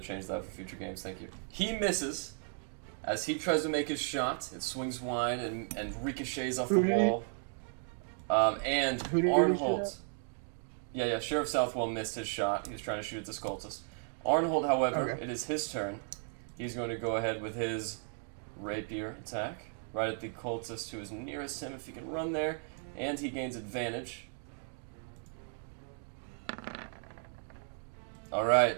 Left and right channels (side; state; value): left; silent; 54 dB below the other